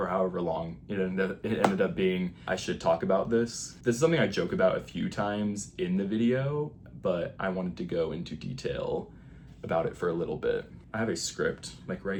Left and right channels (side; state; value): both; identical; correlation 1.00